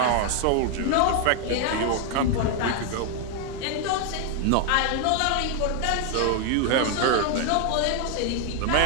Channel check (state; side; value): different; both; correlation 0.00